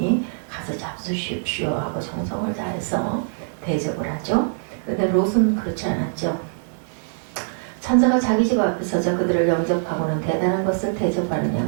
가서 잡수십시오 하고 정성을 다해서 대접을 하죠. 그런데 롯은 그렇지 않았죠. 천사가 자기 집 앞에 서서 그들을 영접하고는 대단한 것을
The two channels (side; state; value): left; silent; digital silence